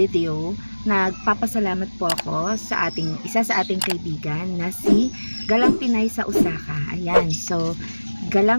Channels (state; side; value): inverted; both; correlation -1.00